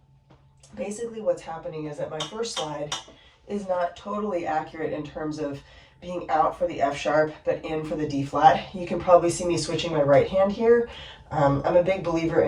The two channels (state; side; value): identical; both; correlation 1.00